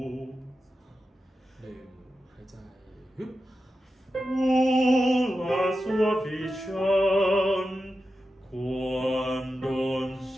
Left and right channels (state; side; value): normal; both; correlation 0.91